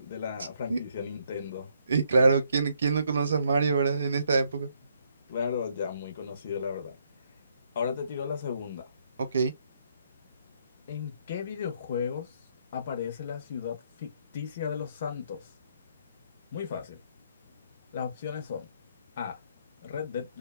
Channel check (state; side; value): inverted; both; correlation -0.72